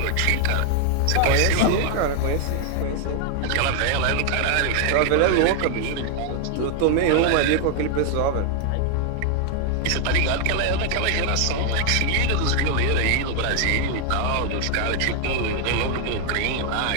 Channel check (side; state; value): both; different; correlation 0.00